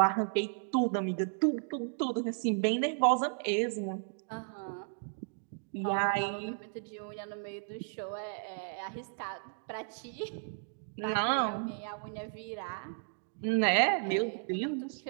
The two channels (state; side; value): silent; left; digital silence